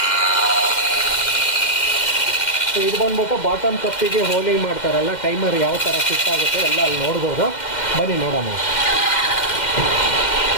ಸೊ ಇದು ಬಂದ್ಬಿಟ್ಟು ಬಾಟಮ್ ಕಪ್ಪಿಗೆ ಹೋಲಿಂಗ್ ಮಾಡ್ತಾರಲ್ಲ, ಟೈಮರ್ ಯಾವ ಥರ ಫಿಟ್ ಆಗುತ್ತೆ ಎಲ್ಲ ಅಲ್ಲಿ ನೋಡ್ಬೋದು. ಬನ್ನಿ ನೋಡೋಣ.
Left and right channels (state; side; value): late; right; 2.1 ms